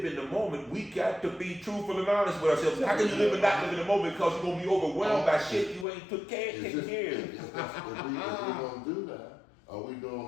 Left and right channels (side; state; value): right; drops out; at 5.9 s